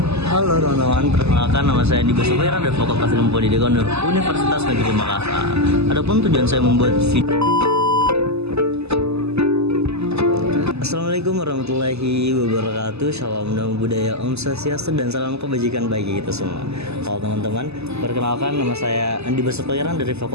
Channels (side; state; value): left; late; 0.79 ms